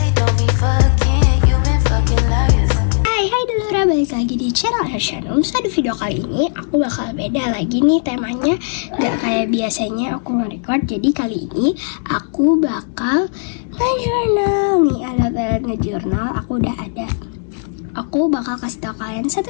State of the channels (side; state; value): right; silent; digital silence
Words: don't be fucking. You been fucking liars. Hai Dulura, balik lagi di channel Hershanum. So di video kali ini aku bakal beda lagi nih temanya. Gak kayak biasanya aku nge-record. Jadi kali ini aku bakal nge-journal. Nih alat-alat nge-journal aku udah ada. Aku bakal kasih tau kalian